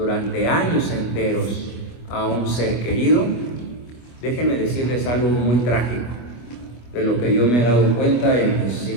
años enteros a un ser querido, déjenme decirles algo muy trágico, de lo que yo me he dado cuenta en mis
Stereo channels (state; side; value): late; right; 25 ms